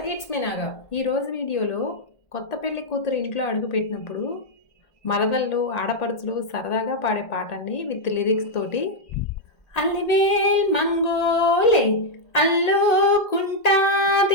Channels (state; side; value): late; right; 1.5 ms